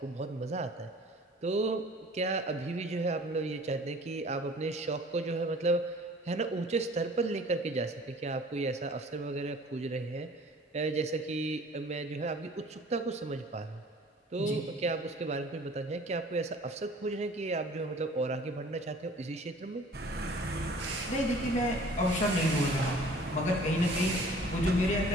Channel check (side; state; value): both; normal; correlation 0.50